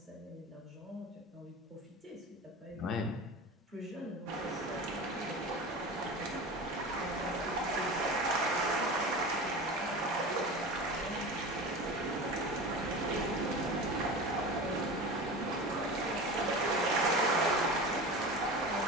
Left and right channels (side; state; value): both; normal; correlation 0.30